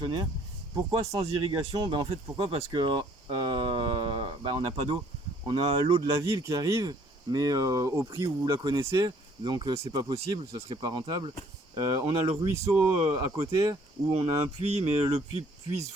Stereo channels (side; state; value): both; normal; correlation 0.60